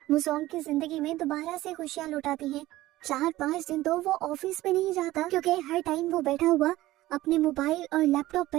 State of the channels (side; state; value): left; quieter; 16.6 dB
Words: वो सोंग की जिंदगी में दोबारा से खुशियां लौट आती हैं 4-5 दिन तो वो ऑफिस में नहीं जाता, क्योंकि हर टाइम वो बैठा हुआ अपने मोबाइल और लैपटॉप